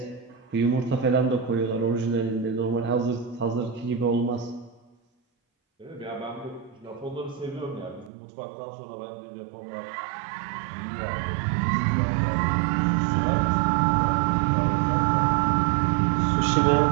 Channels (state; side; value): drops out; left; at 8.1 s